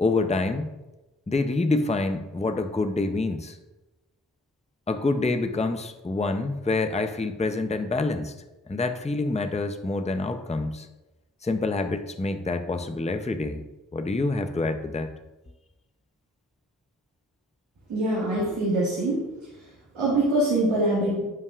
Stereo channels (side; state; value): both; normal; correlation 0.58